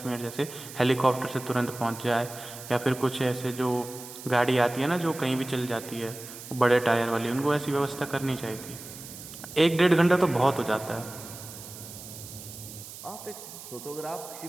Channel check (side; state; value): right; noise; hiss, 13 dB below the sound